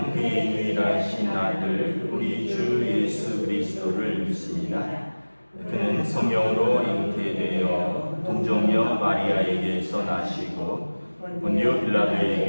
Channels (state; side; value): inverted; both; correlation -1.00